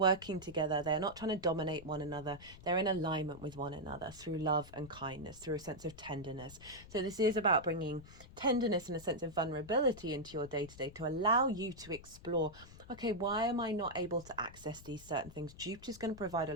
together. They're not trying to dominate one another. They're in alignment with one another through love and kindness, through a sense of tenderness. So this is about bringing tenderness and a sense of vulnerability into your day-to-day to allow you to explore, okay, why am I not able to access these certain things? Jupiter's going to provide a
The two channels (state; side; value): noise; left; rumble, 18 dB below the sound